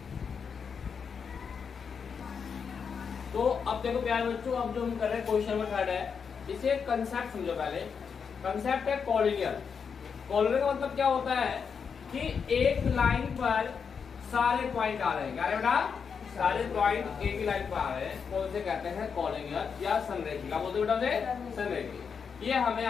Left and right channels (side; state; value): right; quieter; 6.3 dB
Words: तो अब देखो प्यारे बच्चों, अब जो हम कर रहे हैं क्वेश्चन नंबर 3 है, इसे कंसेप्ट समझो पहले। कंसेप्ट है कॉलिनियर। कॉलिनियर का मतलब क्या होता है कि एक लाइन पर सारे पॉइंट आ रहे हैं, क्या बेटा सारे पॉइंट एक ही लाइन पर आ रहे हैं, कौन से कहते हैं कॉलिनियर या संरेखी। क्या बोलते हैं बेटा संरेखी। ये हमें